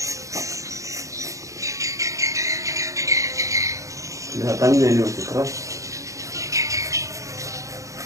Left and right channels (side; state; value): left; late; 0.16 ms